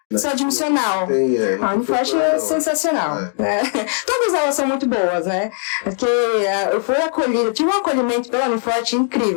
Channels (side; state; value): right; silent; digital silence